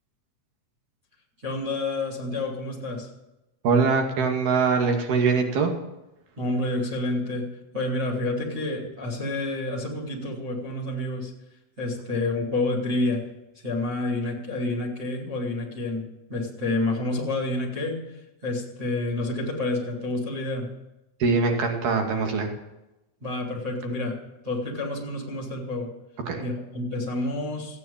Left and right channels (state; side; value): late; left; 7.7 ms